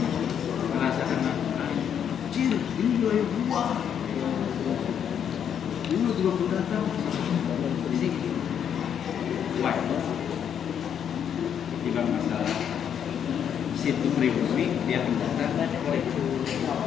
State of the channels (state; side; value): quieter; right; 8.6 dB